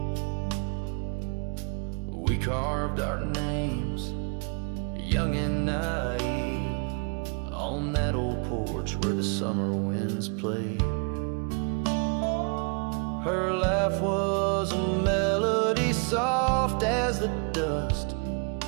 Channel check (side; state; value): left; quieter; 37.5 dB